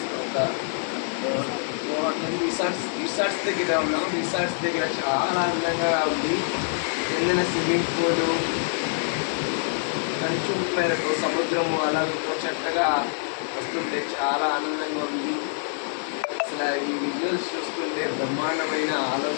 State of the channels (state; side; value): silent; right; digital silence